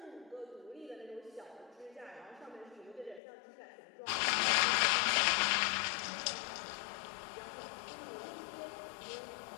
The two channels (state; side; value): drops out; right; at 3.2 s